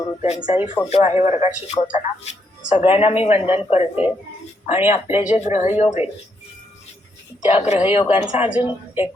त्यांचाही फोटो आहे वर्गात शिकवताना. सगळ्यांना मी वंदन करते. आणि आपले जे ग्रहयोग आहेत त्या ग्रहयोगांचा अजून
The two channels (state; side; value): normal; both; correlation 0.76